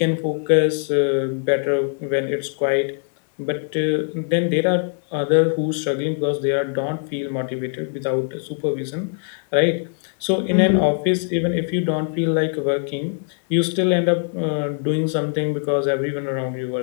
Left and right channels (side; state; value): right; silent; 60 dB below the other